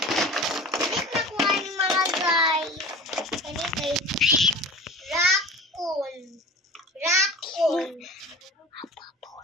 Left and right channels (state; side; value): normal; both; correlation 0.37